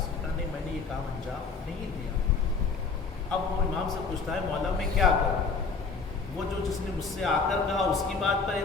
نے کہا نہیں میں نے یہ کام انجام نہیں دیا. اب وہ امام سے پوچھتا ہے مولا میں کیا کروں؟ وہ جو جس نے مجھ سے آ کر کہا اس کی بات پر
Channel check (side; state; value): right; quieter; 4.7 dB